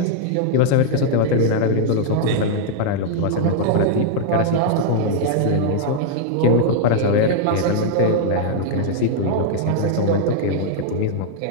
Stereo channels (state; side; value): different; both; correlation -0.01